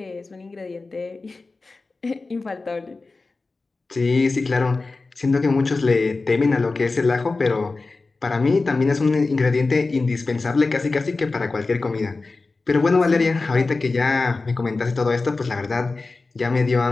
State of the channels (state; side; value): quieter; right; 3.7 dB